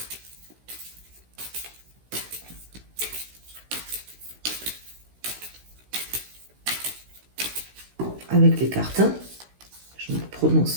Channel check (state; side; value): late; left; 16 ms